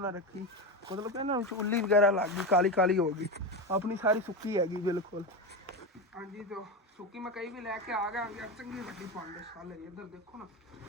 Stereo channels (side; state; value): both; normal; correlation 0.17